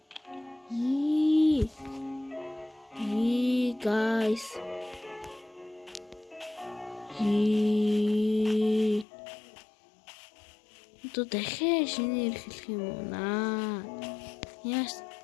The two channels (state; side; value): drops out; right; at 9.1 s